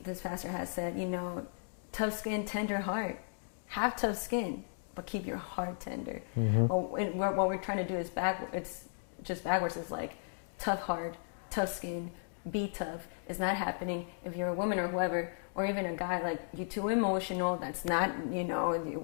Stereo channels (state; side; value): silent; right; digital silence